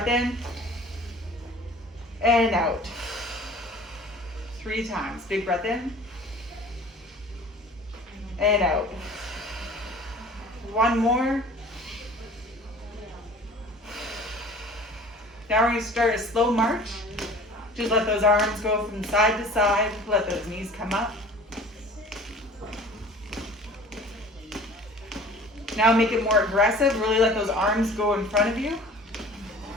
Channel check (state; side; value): normal; both; correlation 0.45